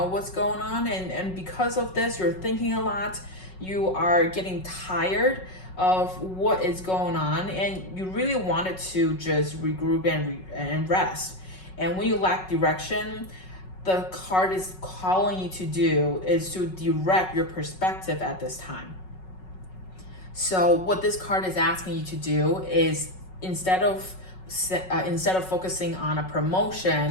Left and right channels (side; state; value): right; late; 5.4 ms